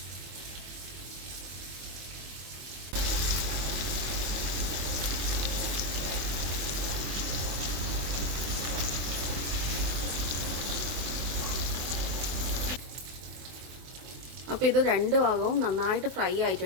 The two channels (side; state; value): left; late; 24 ms